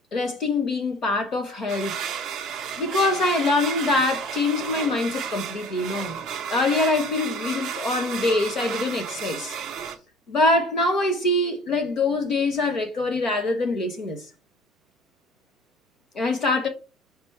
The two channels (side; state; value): both; normal; correlation 0.46